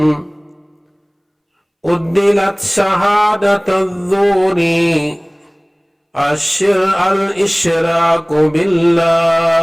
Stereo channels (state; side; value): identical; both; correlation 1.00